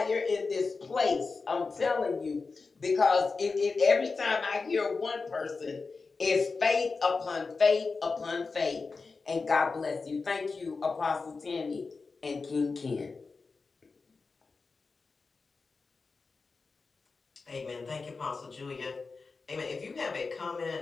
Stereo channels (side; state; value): right; quieter; 4.3 dB